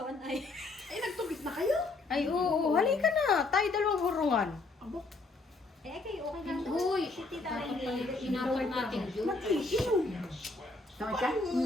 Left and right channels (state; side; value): quieter; right; 3.4 dB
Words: 1 eye. Ay, nagtubig na kayo? Ay, oo, halika na. Tayo dalawang hurungan. Eh, kayo okay lang doon. Uy, Si tita dapat pala Rainy. inapot natin yun. Tawag ka?